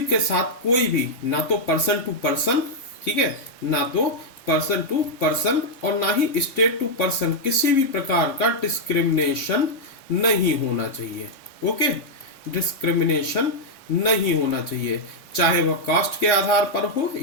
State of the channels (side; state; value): right; late; 3.6 ms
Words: के साथ कोई भी ना तो पर्सन टू पर्सन, ठीक है, ना तो पर्सन टू पर्सन और ना ही स्टेट टू पर्सन किसी भी प्रकार का डिस्क्रिमिनेशन नहीं होना चाहिए। ओके, डिस्क्रिमिनेशन नहीं होना चाहिए, चाहे वह कास्ट के आधार पर हो